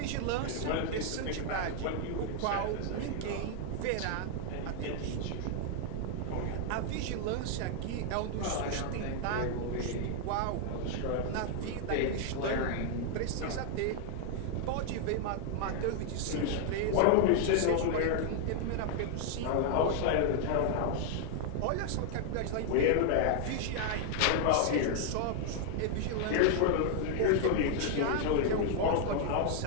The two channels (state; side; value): different; both; correlation 0.00